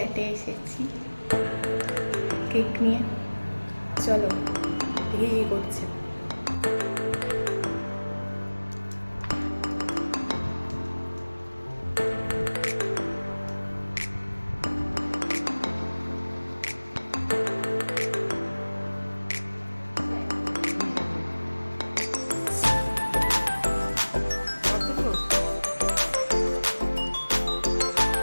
এসেছি কেক নিয়ে। চলো দেখি কি করছে।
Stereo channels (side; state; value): both; inverted; correlation -1.00